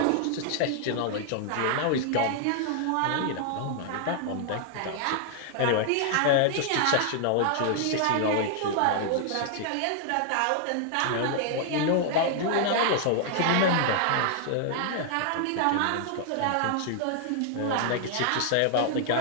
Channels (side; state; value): both; different; correlation 0.00